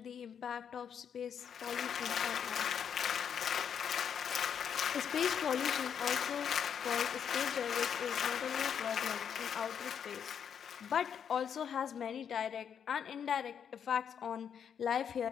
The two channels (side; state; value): right; quieter; 7.9 dB